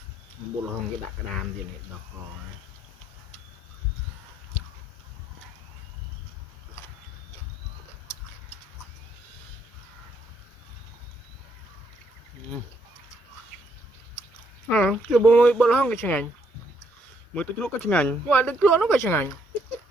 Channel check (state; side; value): normal; both; correlation 0.71